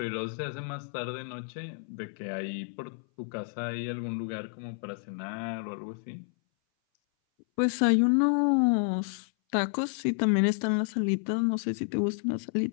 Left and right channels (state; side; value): silent; right; 58 dB below the other